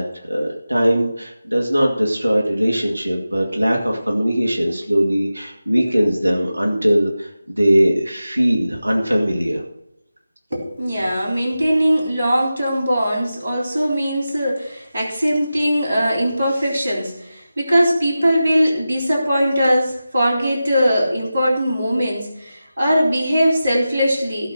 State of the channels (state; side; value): inverted; both; correlation -0.93